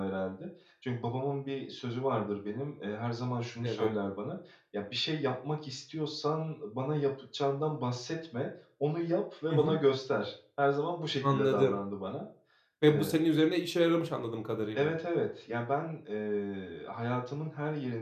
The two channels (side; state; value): both; identical; correlation 1.00